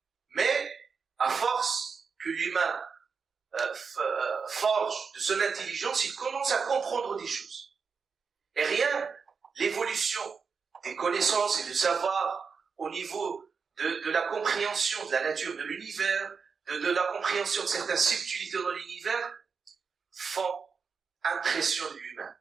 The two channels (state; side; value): quieter; left; 5.5 dB